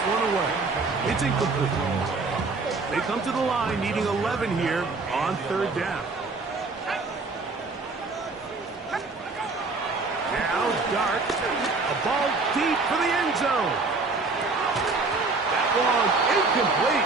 one away. It's incomplete. They come to the line needing 11 here on third down. Now Dart. A ball deep for the end zone. That one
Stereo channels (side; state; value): left; quieter; 3.8 dB